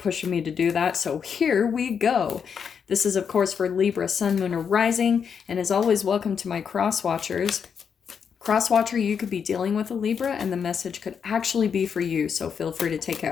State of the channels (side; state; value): right; quieter; 6.9 dB